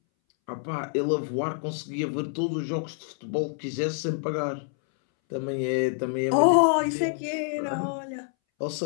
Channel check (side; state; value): right; silent; 60 dB below the other